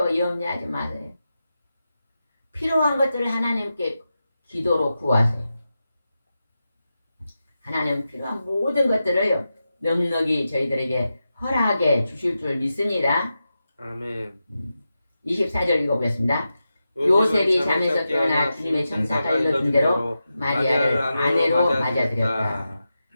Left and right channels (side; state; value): both; inverted; correlation -0.90